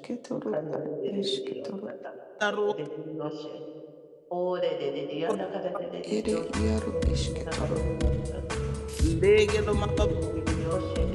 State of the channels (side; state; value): both; identical; correlation 1.00